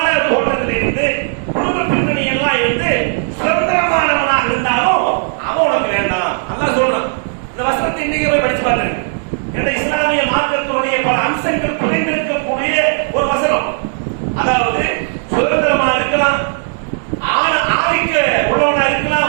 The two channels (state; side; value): silent; left; digital silence